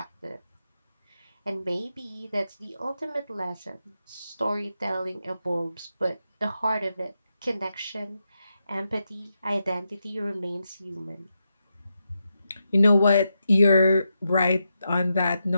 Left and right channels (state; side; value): inverted; both; correlation -0.86